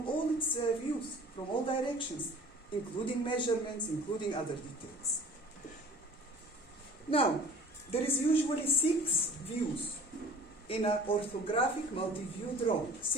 all its views, from all directions, including measurements, including other details. Now, there is usually 6 views in an orthographic multi-view drawing.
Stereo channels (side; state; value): both; normal; correlation 0.46